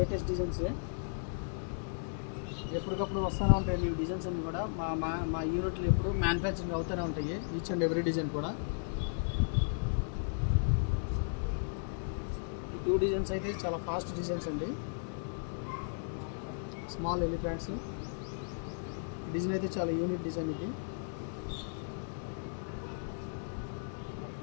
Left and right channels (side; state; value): right; silent; digital silence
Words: డిజైన్సే, ఎప్పటికప్పుడు వస్తూనే ఉంటాయి. ఈ డిజైన్స్ అన్నీ కూడా మా యూనిట్లు ఎప్పుడు మ్యానుఫ్యాక్చరింగ్ అవుతూనే ఉంటాయి, ఈచ్ అండ్ ఎవ్రీ డిజైన్ కూడా. ఈ 2 డిజైన్స్ అయితే చాలా ఫాస్ట్ డిజైన్స్ అండి. స్మాల్ ఎలిఫెంట్స్ డిజైన్ అయితే చాలా యూనిక్ డిజైన్. ఇది